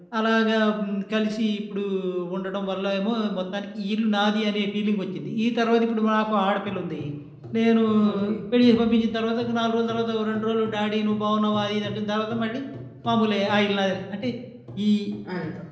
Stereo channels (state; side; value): identical; both; correlation 1.00